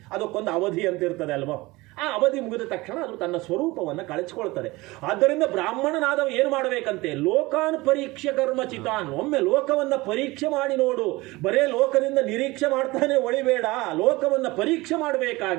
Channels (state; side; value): quieter; left; 21.4 dB